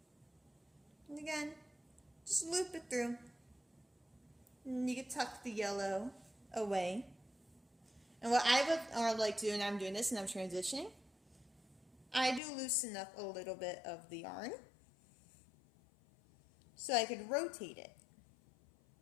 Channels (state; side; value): drops out; right; at 12.4 s